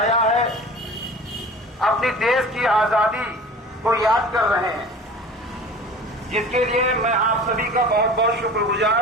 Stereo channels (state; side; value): normal; both; correlation 0.40